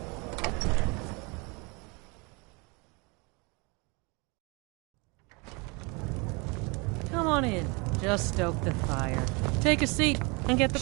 Come on in. Just stoke the fire. Take a seat and get the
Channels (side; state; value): left; quieter; 29.3 dB